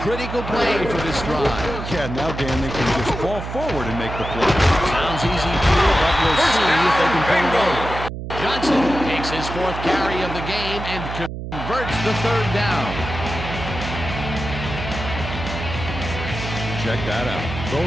critical play for this drive. Yeah, now, Dan, they can just fall forward and make the play. Sounds easy, Peter, but we'll see if they can pull it off. Johnson takes his 4th carry of the game and converts the 3rd down. Check that out.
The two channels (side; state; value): right; noise; hum, 7 dB below the sound